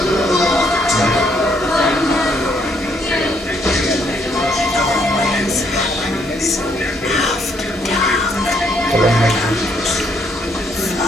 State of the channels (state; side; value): normal; both; correlation 0.71